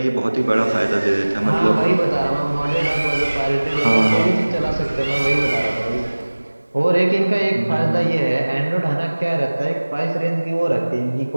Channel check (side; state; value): both; inverted; correlation -1.00